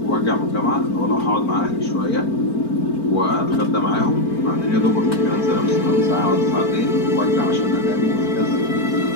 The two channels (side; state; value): right; late; 4.4 ms